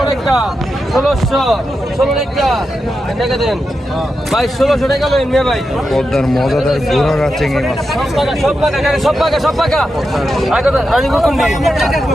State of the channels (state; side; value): normal; both; correlation 0.88